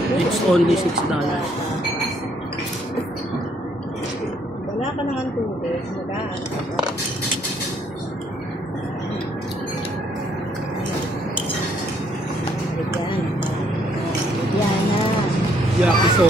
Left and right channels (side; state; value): both; normal; correlation 0.68